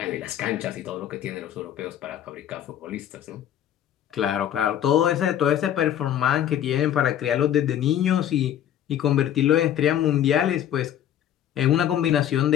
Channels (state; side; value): quieter; right; 10.7 dB